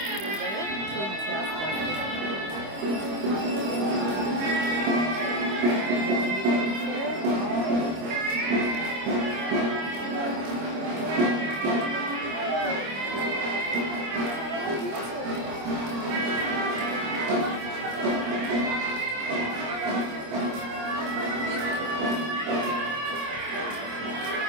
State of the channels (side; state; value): left; late; 25 ms